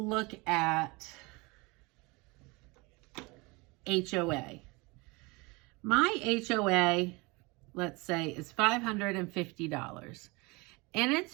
at HOA. My HOA, let's say, is $550, and it's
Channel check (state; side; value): quieter; left; 25.9 dB